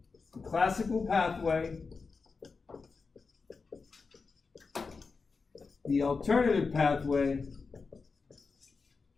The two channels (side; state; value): right; quieter; 4.6 dB